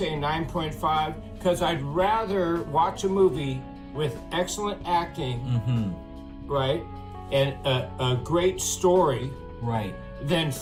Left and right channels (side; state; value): both; identical; correlation 1.00